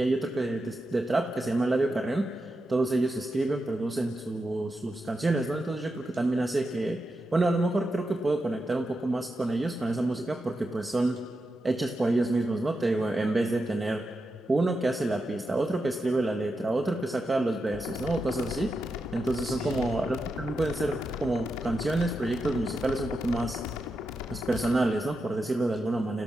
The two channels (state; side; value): normal; both; correlation 0.88